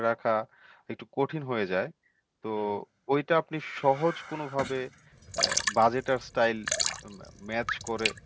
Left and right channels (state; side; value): identical; both; correlation 1.00